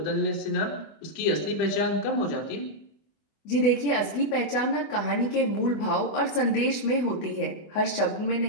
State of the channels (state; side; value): late; right; 24 ms